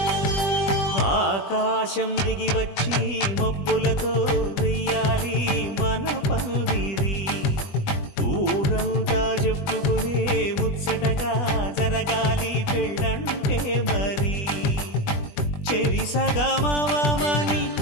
ఆకాశం దిగి వచ్చి మబ్బులతో వెయ్యాలి మన పందిరి ఊరంతా చెప్పుకునే ముచ్చటగా జరగాలి పెళ్ళంటే మరి చెరిసగమవమని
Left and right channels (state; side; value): late; right; 20 ms